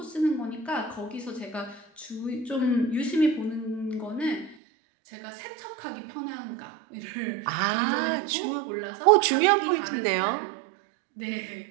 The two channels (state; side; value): drops out; left; at 4.5 s